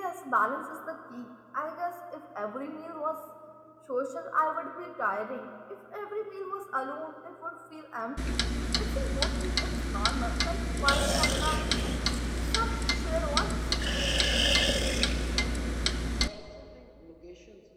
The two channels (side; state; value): both; identical; correlation 1.00